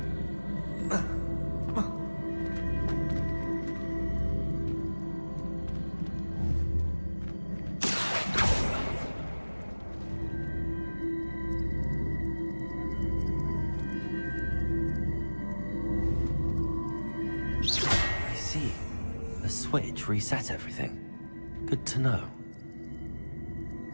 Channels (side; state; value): both; inverted; correlation -1.00